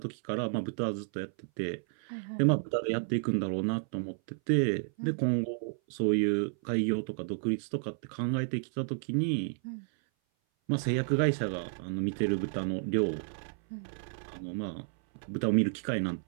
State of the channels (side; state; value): left; silent; 57 dB below the other